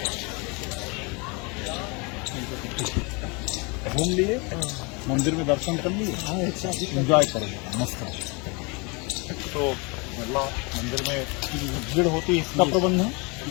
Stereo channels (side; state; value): right; quieter; 29.9 dB